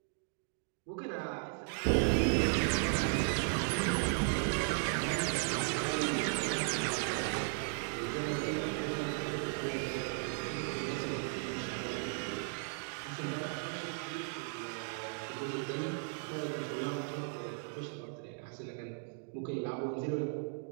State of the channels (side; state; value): left; silent; 54 dB below the other